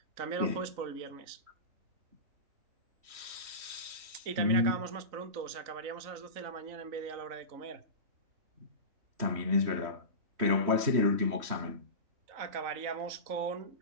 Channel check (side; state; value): left; late; 3.1 ms